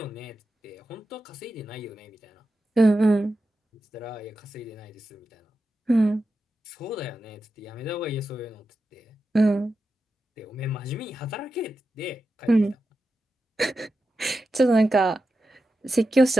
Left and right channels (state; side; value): normal; both; correlation 0.90